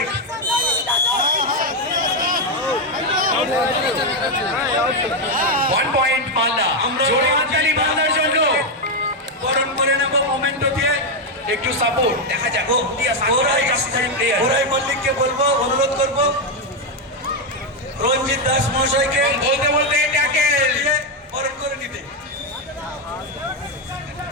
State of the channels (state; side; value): normal; both; correlation 0.04